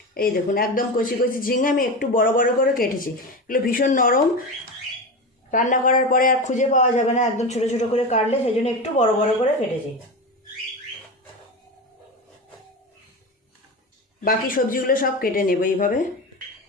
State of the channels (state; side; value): normal; both; correlation 0.23